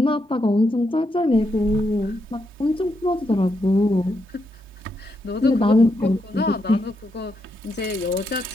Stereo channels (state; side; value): normal; both; correlation 0.81